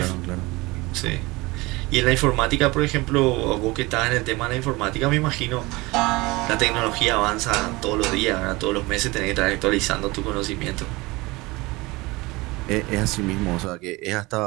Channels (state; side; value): quieter; left; 22.5 dB